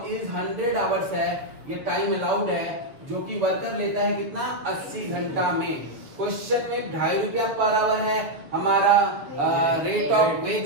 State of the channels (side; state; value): left; late; 6.7 ms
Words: is 100 hours है। ये टाइम अलाउड है जो कि वर्कर लेता है कितना, 80 घंटा में। क्वेश्चन में 2.5 रुपया पर आवर है हमारा रेट ऑफ